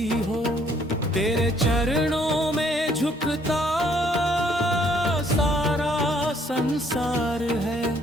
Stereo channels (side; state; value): both; normal; correlation 0.65